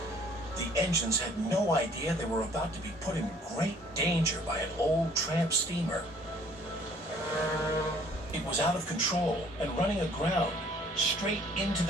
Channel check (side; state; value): both; normal; correlation 0.57